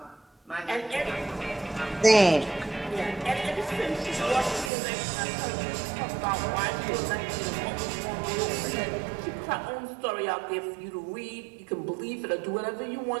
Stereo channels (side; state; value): left; drops out; at 4.7 s